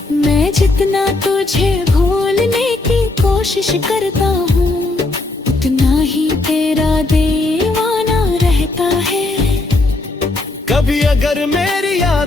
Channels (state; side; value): quieter; right; 3.0 dB